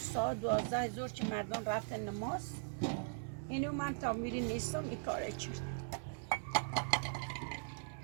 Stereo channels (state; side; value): silent; left; digital silence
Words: 12 زور که مردان رفتن نماز اینو من تا میری نیستم این کاره کرد